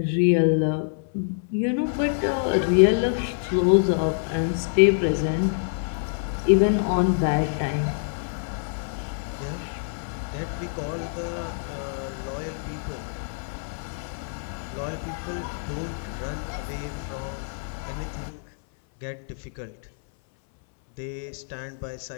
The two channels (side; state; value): right; silent; 60 dB below the other